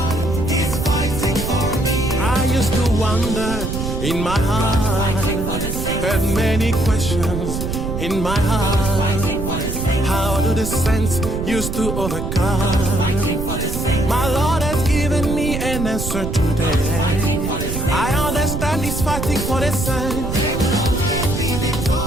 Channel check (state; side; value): noise; right; rumble, 4 dB below the sound